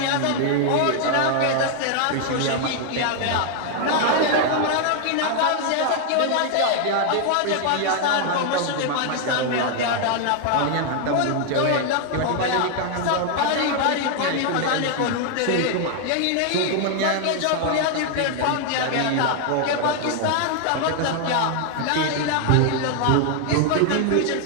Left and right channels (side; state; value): both; different; correlation 0.00